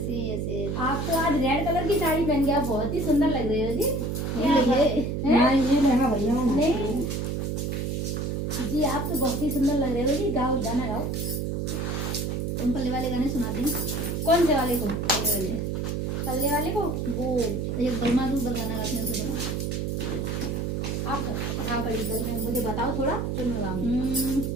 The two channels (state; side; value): noise; right; hum, 1 dB below the sound